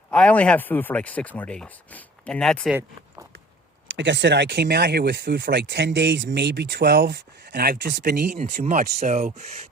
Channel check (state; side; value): normal; both; correlation 0.48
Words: I only have food for like 6 more days. And that's it. Like I said, I came out here with food for like 10 days, maybe 12. And I've just been eating too much. So